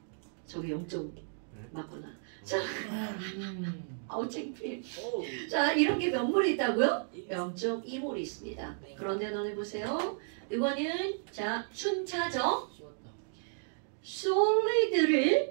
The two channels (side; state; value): left; silent; digital silence